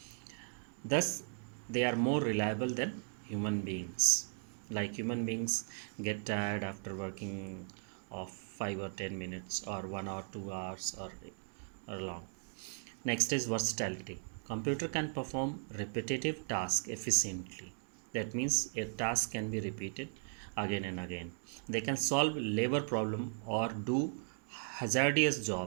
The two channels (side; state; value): left; silent; digital silence